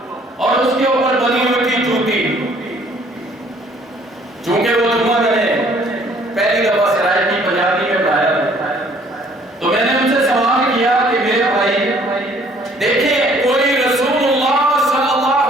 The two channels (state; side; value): normal; both; correlation 0.59